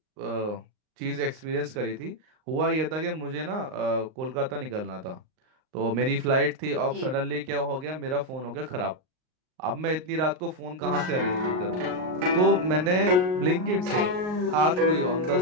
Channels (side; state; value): left; late; 38 ms